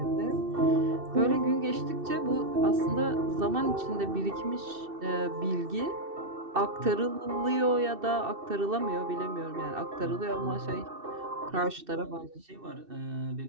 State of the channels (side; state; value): left; late; 2.6 ms